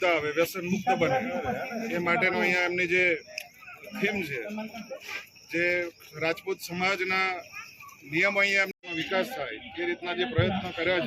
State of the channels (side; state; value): both; identical; correlation 1.00